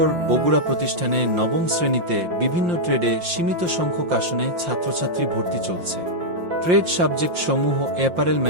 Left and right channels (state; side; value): late; left; 5.7 ms